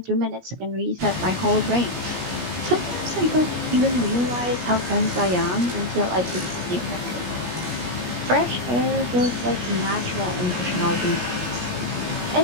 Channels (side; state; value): left; late; 17 ms